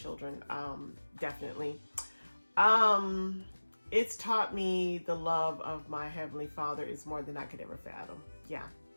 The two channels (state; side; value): inverted; both; correlation -1.00